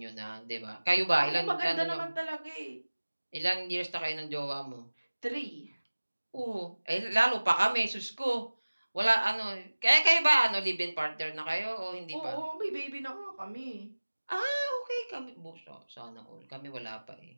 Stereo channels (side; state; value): both; inverted; correlation -1.00